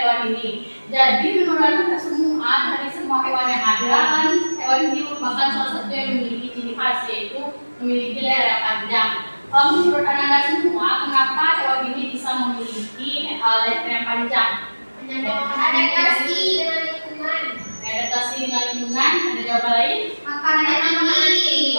hewan ini. Jadi menurut Anda semua, dari semua hewan yang ada kan, hewan ini merupakan salah satu yang memiliki ciri khas, yaitu memiliki leher yang panjang. Menurut Anda semua, kenapa hewan ini bisa memiliki leher yang panjang? Adaptasi dengan lingkungan. Adaptasi dengan lingkungan. Ada jawaban lain? Makanan yang tinggi.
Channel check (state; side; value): inverted; both; correlation -1.00